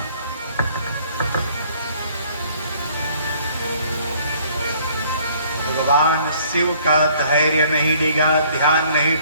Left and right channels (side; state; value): both; inverted; correlation -0.59